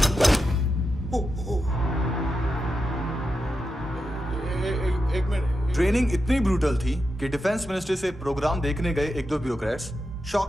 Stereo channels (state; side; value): normal; both; correlation 0.88